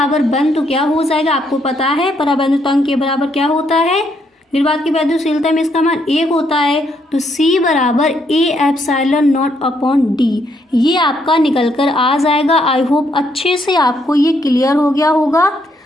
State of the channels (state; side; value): normal; both; correlation 0.73